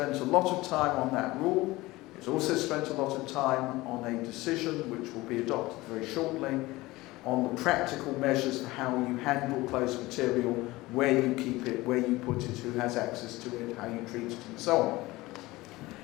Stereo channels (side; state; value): right; quieter; 19.8 dB